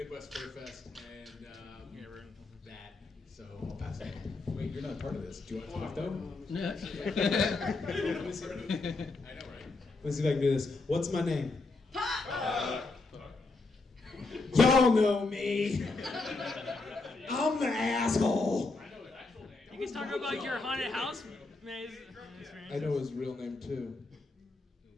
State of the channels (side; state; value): right; quieter; 3.5 dB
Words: Fur Fest and that. So I'll pass it on. Wait, you're not part of this. Do you want to talk though? Yeah. I know, right? Let's see if I can do this. What's my name? Y'all know me. I'm the asshole. I know his actual name. You can talk about your haunted house maze experience. I know his real name too.